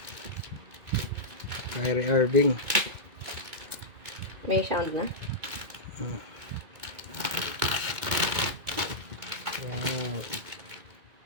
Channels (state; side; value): late; left; 2.2 ms